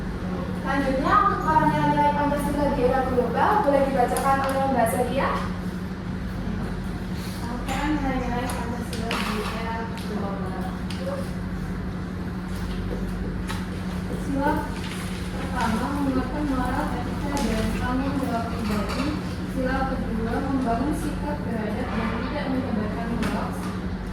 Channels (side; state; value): both; identical; correlation 1.00